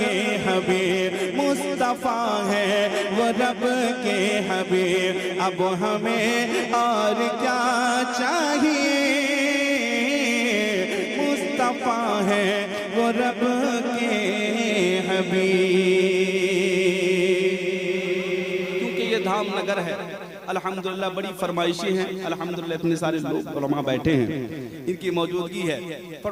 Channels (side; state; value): both; identical; correlation 1.00